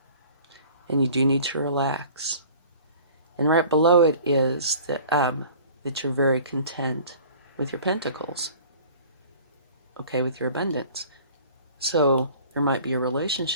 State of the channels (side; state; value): both; inverted; correlation -0.47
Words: and you do need to relax. And right below it is that you're very content with your pentacles, okay, with your abundance. So there might be a